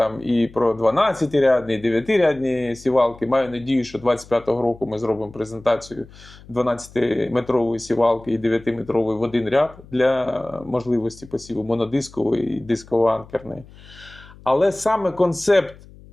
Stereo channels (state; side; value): noise; left; hum, 22 dB below the sound